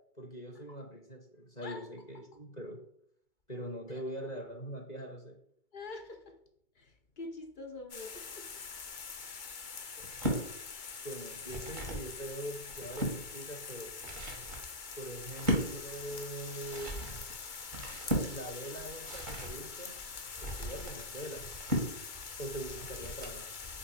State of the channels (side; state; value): right; late; 2.3 ms